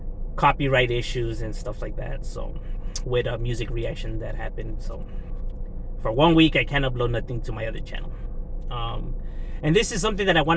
copyright issues and stuff like that. So, with a music reaction that happened. So, for 1 week, I can't upload nothing to my other channel. And this is something that I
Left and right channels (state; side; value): identical; both; correlation 1.00